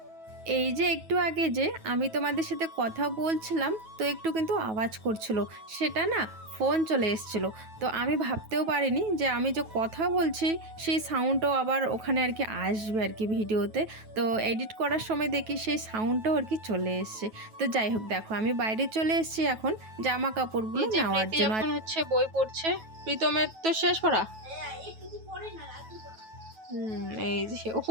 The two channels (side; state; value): left; late; 9.2 ms